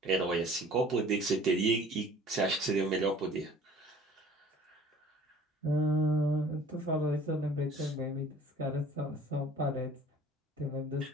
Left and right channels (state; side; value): normal; both; correlation 0.50